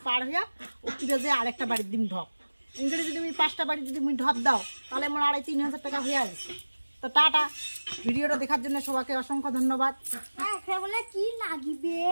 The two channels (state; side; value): inverted; both; correlation -1.00